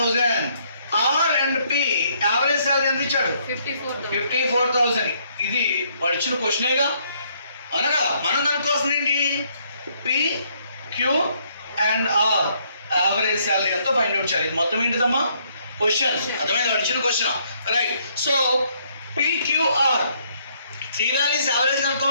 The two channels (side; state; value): both; inverted; correlation -0.68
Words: R and P average salary ఎంత ఇచ్చాడు? 54,000. ఇది వాడు ఇచ్చిన క్వశ్చనేగా అనగా మనం కనుక్కోవాల్సింది ఏంటి? P, Q and R average salary ఎంతో ఫైండ్ అవుట్ చేయాలి. మొత్తం ఏంటిదమ్మా క్వశ్చన్? అర్థమైంది, వాడు ఇచ్చిన question. Right, so P, Q, R 3 values average